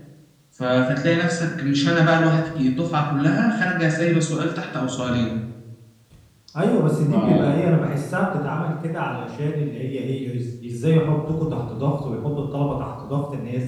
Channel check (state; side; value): identical; both; correlation 1.00